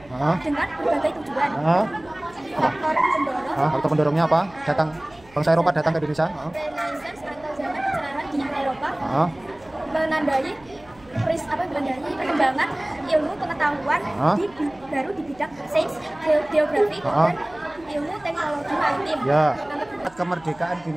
dengan berbagai tujuan. Faktor pendorongnya apa? Bangsa Eropa datang ke Indonesia? Renaissance atau zaman pencerahan di Eropa menandai perkembangan ilmu pengetahuan baru di bidang sains, geografi, dan ilmu teknologi maritim. Ya. Kemerdekaan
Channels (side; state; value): right; noise; hum, 26 dB below the sound